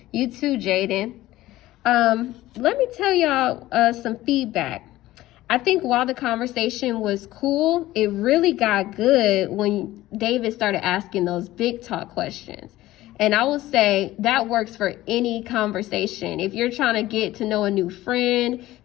You too, Jaden. Let me tell y'all some feedback. I think while the conversation was cool, it really got good when David started asking those big talk questions. And I will say that works for any conversation. If you're trying to get to know a new friend,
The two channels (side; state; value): right; quieter; 16.2 dB